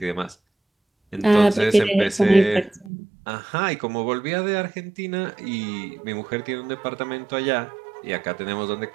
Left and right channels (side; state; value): left; drops out; at 2.9 s